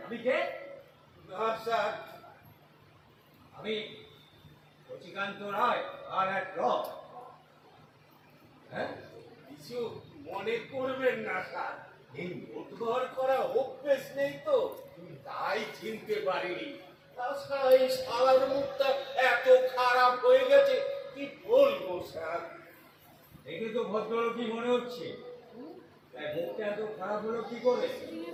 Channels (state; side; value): identical; both; correlation 1.00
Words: আমি কে? না স্যার, আমি শচিকান্ত রায় আর এক র। হ্যাঁ, কিছু মনে করবেন না স্যার, এই উদ্ধার করা অভ্যেস নেই তো, তাই চিনতে পারিনি। তাছাড়া এই শালার মুখটা এত খারাপ হয়ে গেছে, কি বলবো স্যার। দেখে তো ভদ্রলোকই মনে হচ্ছে, তাই মুখটা এত খারাপ হলো কি করে?